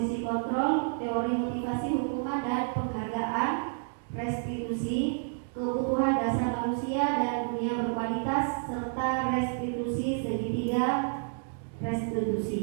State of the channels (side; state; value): left; silent; digital silence